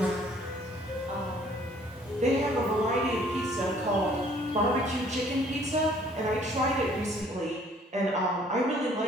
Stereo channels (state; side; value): normal; both; correlation 0.58